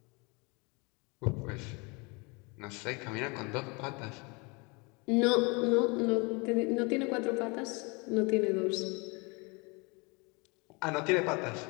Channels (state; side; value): quieter; right; 29.2 dB